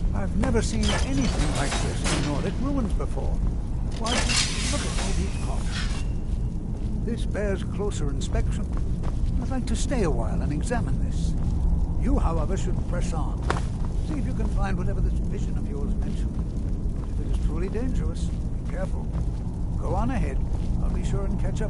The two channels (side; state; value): both; identical; correlation 1.00